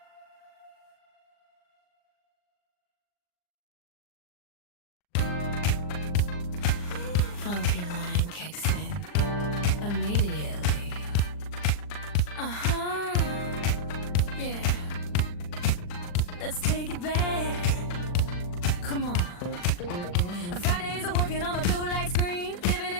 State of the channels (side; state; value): right; late; 40 ms